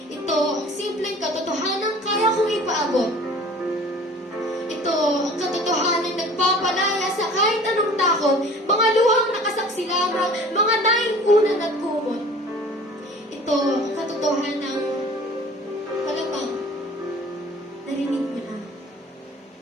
Ito ang simpleng katotohanan kaya kong ipaabot. Ito ang katotohanan nagpapalaya sa kahit anong takot, mga luhang nakasaksi lamang, mga naingkunan at kumot. Ito ang katotohanan malamang narinig mo na.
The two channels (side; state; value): both; normal; correlation 0.46